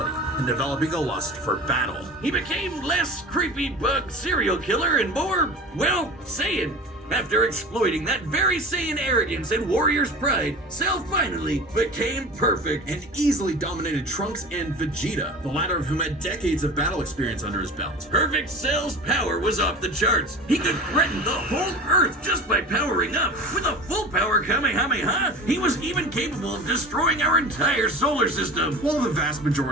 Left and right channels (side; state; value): both; normal; correlation 0.35